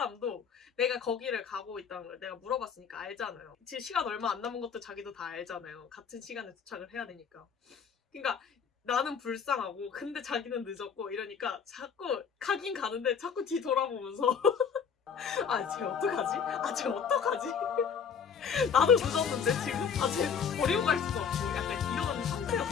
내가 거기를 가고 있다는 걸 내가 물어봤으니까 알잖아요. 지금 시간 얼마 안 남은 것도 자기도 다 알잖아요. 같은 시간에 도착을 해야 되니까. 그러니까 나는 불쌍하고 근데 자기는 늦었고 이러니까 자꾸 가긴 가는데 자꾸 뒤 돌아보면서 쟤 어떡하지? 쟤 어떡하지? 나도 늦었는데 지금? 쟤 버리고 갈 수도 없고 약간 이런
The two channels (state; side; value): quieter; right; 6.8 dB